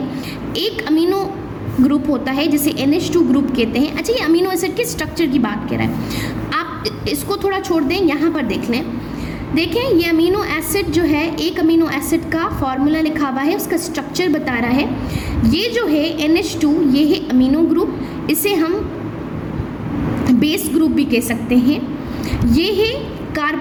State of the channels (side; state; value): both; identical; correlation 1.00